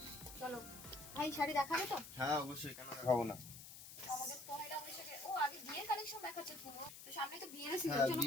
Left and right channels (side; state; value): left; noise; hiss, 13 dB below the sound